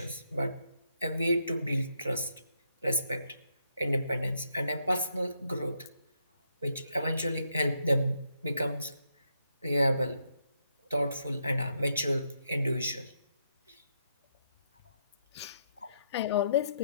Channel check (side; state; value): both; inverted; correlation -0.77